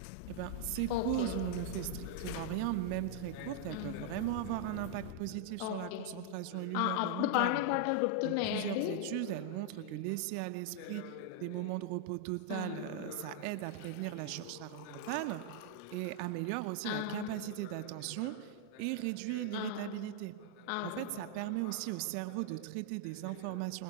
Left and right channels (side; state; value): both; different; correlation -0.01